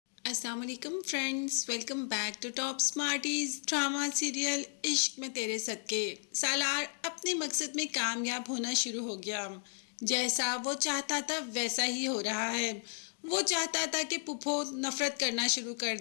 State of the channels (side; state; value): right; silent; 55 dB below the other